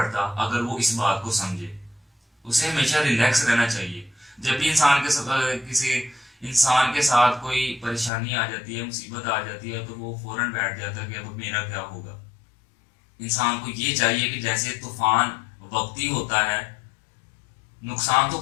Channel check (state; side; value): drops out; right; at 8.1 s